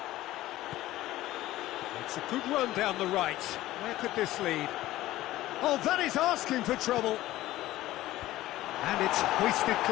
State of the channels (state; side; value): quieter; right; 15.9 dB